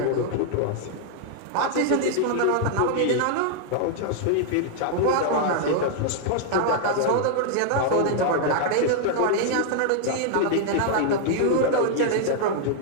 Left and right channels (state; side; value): different; both; correlation 0.00